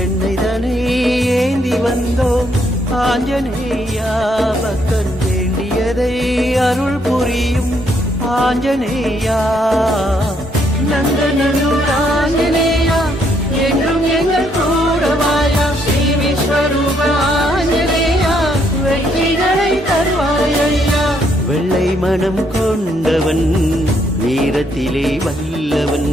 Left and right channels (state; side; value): normal; both; correlation 0.72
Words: ஏந்தி வந்தோம் ஆஞ்சநேயா பக்தன் வேண்டியதை அருள் புரியும் ஆஞ்சநேயா நந்தனூர் ஆஞ்சநேயா என்றும் எங்கள் கூடவாயா ஸ்ரீ விஸ்வரூப ஆஞ்சநேயா வெற்றிகளை தருவாயா வெள்ளை மனம் கொண்டவன் வீரத்திலே வல்லவன்